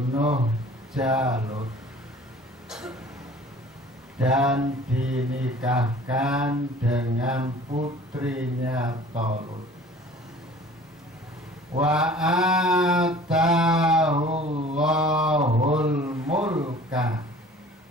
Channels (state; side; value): normal; both; correlation 0.48